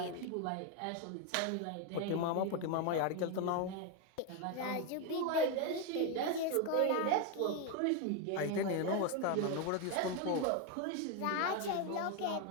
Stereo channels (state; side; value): different; both; correlation 0.02